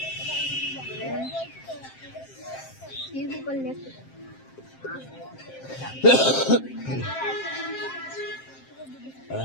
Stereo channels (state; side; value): late; right; 7.6 ms